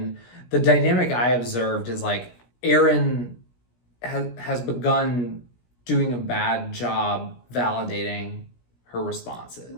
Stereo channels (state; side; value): late; right; 17 ms